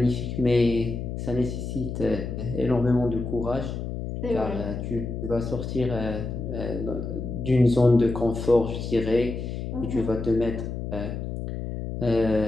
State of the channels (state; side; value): noise; left; hum, 5 dB below the sound